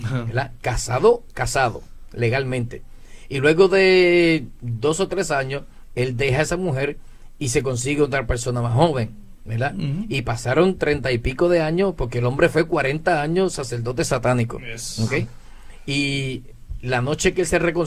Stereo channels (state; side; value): identical; both; correlation 1.00